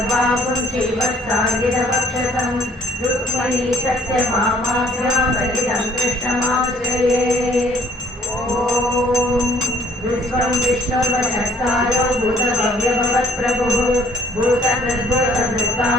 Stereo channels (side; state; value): both; normal; correlation 0.59